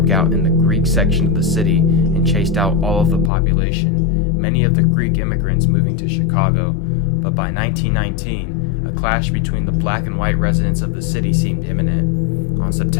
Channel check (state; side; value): drops out; right; at 3.3 s